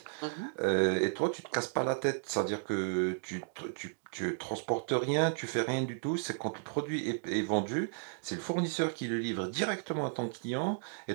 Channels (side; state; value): left; silent; digital silence